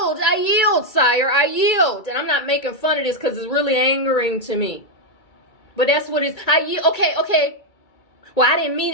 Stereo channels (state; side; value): late; right; 2.3 ms